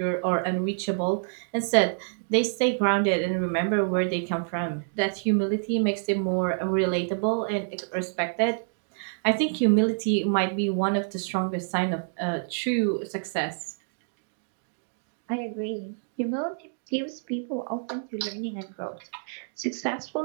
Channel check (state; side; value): silent; left; digital silence